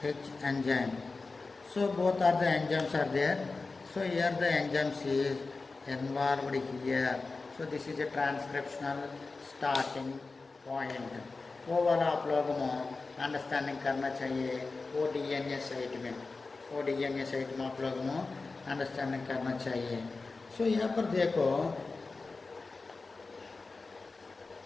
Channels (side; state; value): right; quieter; 3.9 dB